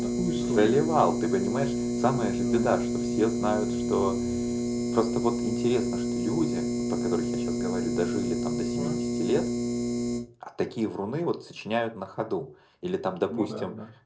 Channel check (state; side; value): identical; both; correlation 1.00